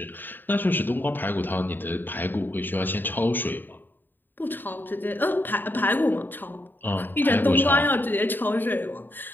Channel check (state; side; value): late; right; 0.092 ms